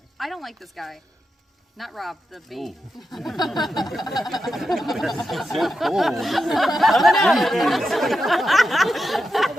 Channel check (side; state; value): both; normal; correlation 0.88